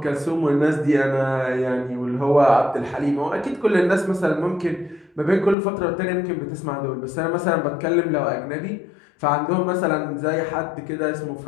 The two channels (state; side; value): drops out; right; at 5.6 s